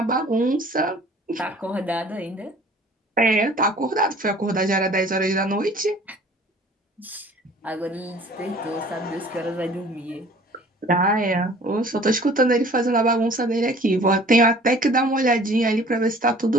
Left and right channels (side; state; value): both; normal; correlation 0.50